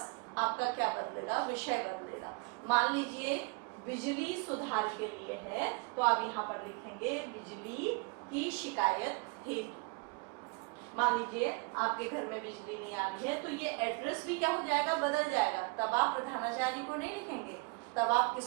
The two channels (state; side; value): quieter; left; 32.3 dB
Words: आपका क्या बदलेगा, विषय बदलेगा। मान लीजिए बिजली सुधार के लिए है तो आप यहाँ पर लिखेंगे बिजली की शिकायत हेतु। मान लीजिए आपके घर में बिजली नहीं आ रही है तो ये एड्रेस भी क्या हो जाएगा, बदल जाएगा। तब आप प्रधानाचार्य को नहीं लिखेंगे, तब आप